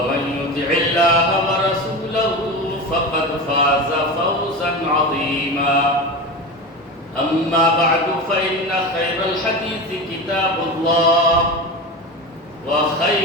يطع الله ورسوله فقد فاز فوزا عظيما أما بعد فإن خير الحديث كتاب الله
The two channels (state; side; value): normal; both; correlation 0.25